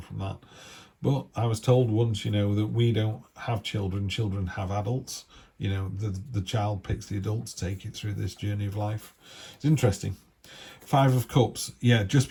that? But I was told once, that we don't have children have adults. The child picks the adult to take it through this journey of life. It's interesting. 5 of Cups. Yeah, just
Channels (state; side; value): identical; both; correlation 1.00